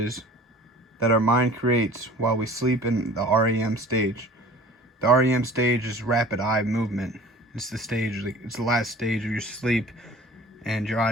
that our mind creates while we sleep in the REM stage. The REM stage is rapid eye movement. It's the last stage of your sleep, and your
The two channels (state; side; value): normal; both; correlation 0.46